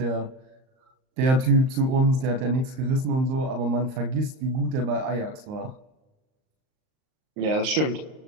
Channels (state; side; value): late; left; 38 ms